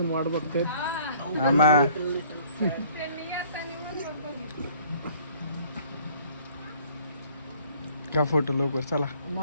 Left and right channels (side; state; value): both; inverted; correlation -0.55